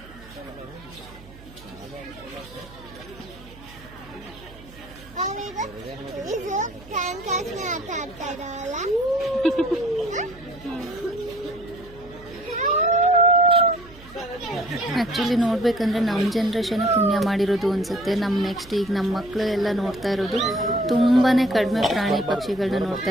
ಇದು ಕ್ಯಾನ್ ಕ್ಯಾಚ್ ಆಟ ಆಡ್ತಾ ಇದ್ದಾವಲ್ಲ. ಆ್ಯಕ್ಚುಲಿ ನೋಡ್ಬೇಕಂದ್ರೆ ನಮ್ಮ ಜನ್ರೇಷನ್ ಪುಣ್ಯ ಮಾಡಿರೋದು ಅನಿಸುತ್ತೆ. ನಮ್ಮ ನೆಕ್ಸ್ಟ್ ಈಗ ನಮ್ಮ ಮಕ್ಕಳು ಎಲ್ಲ ನೋಡ್ತಾ ಇರೋದು ತುಂಬಾ ಕಡಿಮೆ ಪ್ರಾಣಿ ಪಕ್ಷಿಗಳನ್ನ ನೋಡ್ತಾ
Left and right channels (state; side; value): noise; right; hum, 20 dB below the sound